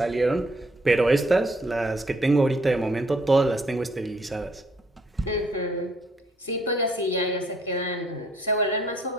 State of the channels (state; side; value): normal; both; correlation 0.66